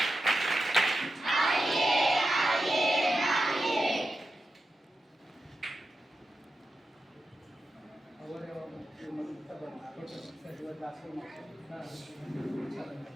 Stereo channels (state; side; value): normal; both; correlation 0.90